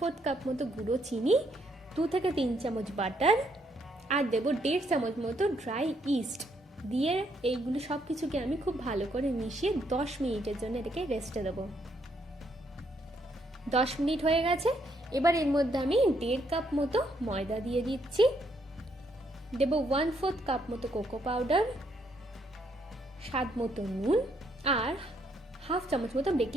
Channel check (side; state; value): both; normal; correlation 0.73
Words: কাপ মতো গুঁড়ো চিনি, 2 থেকে 3 চামচ বাটার, আর দেবো 1.5 চামচ মতো ড্রাই ইস্ট দিয়ে এইগুলো সব কিছুকে আমি খুব ভালো করে মিশিয়ে 10 মিনিটের জন্য এটাকে রেস্টে দেবো। 10 মিনিট হয়ে গেছে। এবার এর মধ্যে আমি 1.5 কাপ মতো ময়দা দিয়ে দিচ্ছি, দেবো 1/4 কাপ মতো কোকো পাউডার, স্বাদ মতো নুন, আর 1/2 চামচ মতো